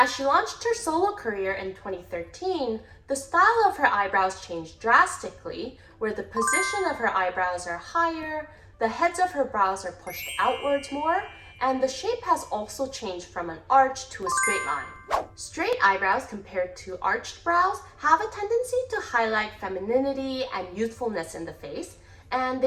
she launched her solo career in 2013, the style of her eyebrows changed drastically, where the position of her eyebrows are higher, the heads of her brows are pushed outwards more, and the shape has also changed from an arch to a straight line. Straight eyebrows compared to arched brows have a tendency to highlight femininity and youthfulness in the face, and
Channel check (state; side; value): identical; both; correlation 1.00